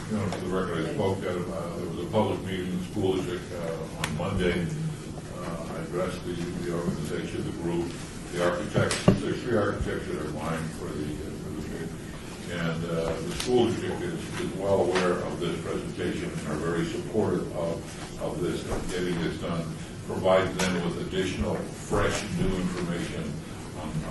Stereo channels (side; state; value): both; identical; correlation 1.00